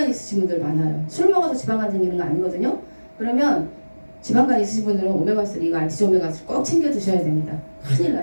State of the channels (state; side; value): inverted; both; correlation -1.00